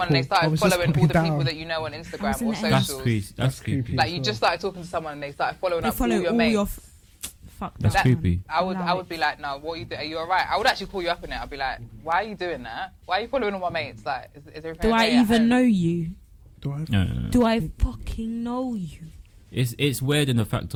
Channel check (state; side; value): identical; both; correlation 1.00